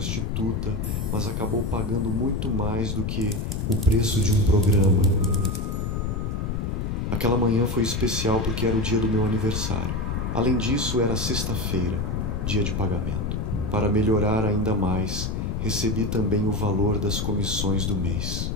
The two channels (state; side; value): noise; left; rumble, 2 dB below the sound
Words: mas acabou pagando muito mais do que o preço de um programa. Aquela manhã foi especial porque era o dia do meu aniversário. Além disso, era sexta-feira, dia de pagamento. Para melhorar ainda mais, recebi também o valor das comissões do mês.